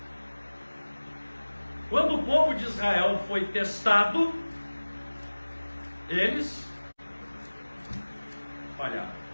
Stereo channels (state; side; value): inverted; both; correlation -1.00